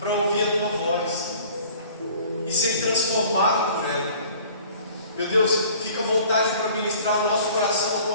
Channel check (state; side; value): inverted; both; correlation -0.49